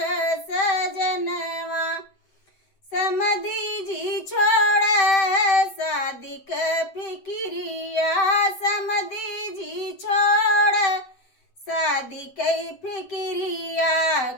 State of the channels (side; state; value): right; late; 7.7 ms